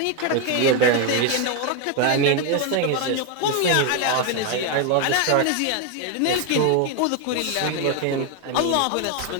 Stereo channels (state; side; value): different; both; correlation 0.01